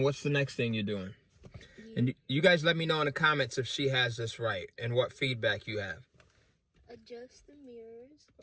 what's the next thing you're doing? And you guys let me know in the comments if she has this right and what feedback you have. Adjust the mirrors.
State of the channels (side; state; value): both; identical; correlation 1.00